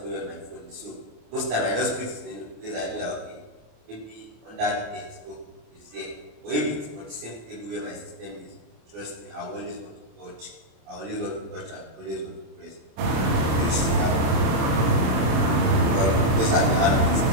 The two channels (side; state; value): left; late; 27 ms